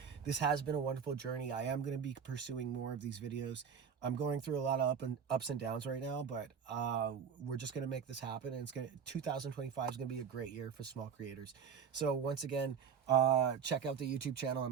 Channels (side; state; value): left; quieter; 6.9 dB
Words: This has been a wonderful journey. I am going to be pursuing more of these videos. I'm going through a lot of ups and downs right now, but we're just going to make this happen. And 2025 is going to be a great year for small creators. So once again, check out the YouTube channel.